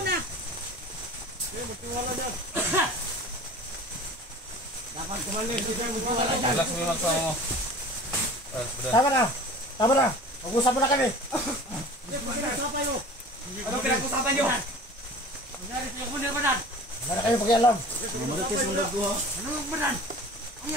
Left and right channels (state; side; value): normal; both; correlation 0.41